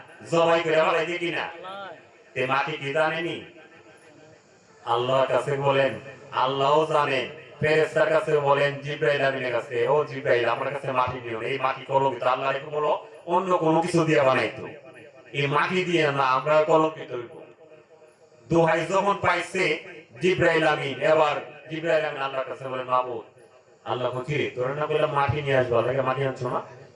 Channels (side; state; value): both; identical; correlation 1.00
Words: জবাই করে ফালাই দিয়ে কিনা? এ মাটি কি জানেনি? আল্লাহর কাছে বলেন, আল্লাহও জানেন। ফেরেশতার কাছে বলেন, জিব্রাইল আমিনের কাছে, ও জিব্রাইল আমার কাছে মাটি দিও, এই মাটি কলঙ্কিত। আল্লাহ রেখে বলো অন্য কোনো কিছু দিয়ে বানাইতো, এই মাটি দিয়ে না আমরা কলঙ্কিত হইব। দোহাই যখন পাইছে জিব্রাইল আমিন, এবার জিব্রাইল আমিন আল্লাহর কাছে বলেন, মাবুদ আল্লাহ কি তোর না বললাম মাটি নিয়ে আসবো, আল্লাহকে মাটি আনছো না?